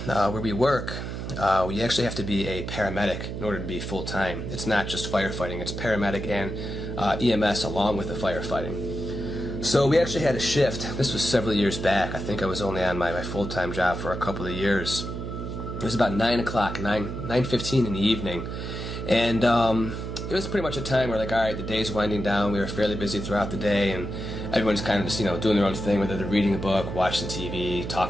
where we work, we actually have to be a paramedic in order to be full-time. It's not just firefighting, it's paramedic and EMS along with the firefighting. So we actually had a shift. This was several years back. I think I was only on my full-time job for a couple of years. It was about 9 o'clock, 9:15 in the evening. And it was pretty much a time where, like, alright, the day's winding down, we were fairly busy throughout the day, and everyone's kind of just, doing their own thing, whether they're reading a book, watching TV,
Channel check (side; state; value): right; noise; hum, 6 dB below the sound